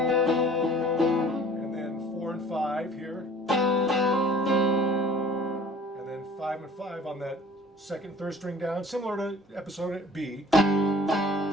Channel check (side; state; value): both; normal; correlation 0.49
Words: And then 4 and 5 here. And then 5 and 5 on that second, third string down, similar to episode B. And